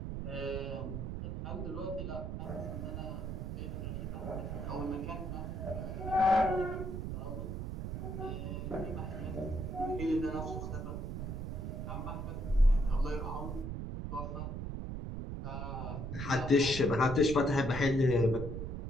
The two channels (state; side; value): noise; right; rumble, 4 dB below the sound